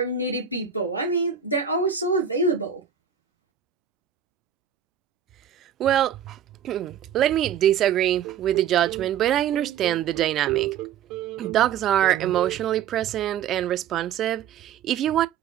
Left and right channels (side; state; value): left; quieter; 8.7 dB